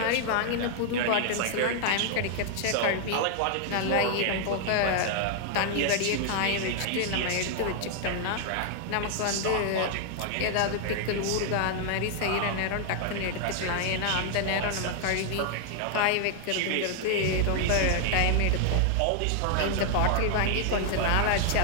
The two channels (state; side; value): different; both; correlation 0.00